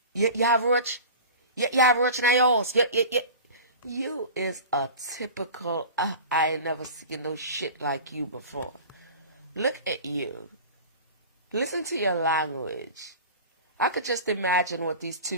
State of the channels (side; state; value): both; inverted; correlation -0.36